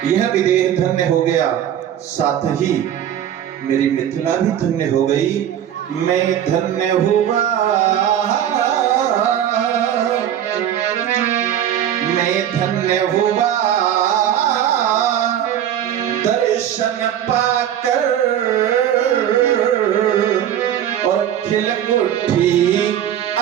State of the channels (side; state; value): left; quieter; 10.4 dB